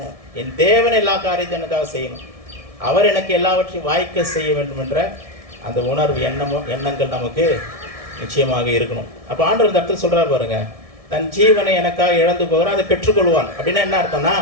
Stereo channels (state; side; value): late; left; 1.7 ms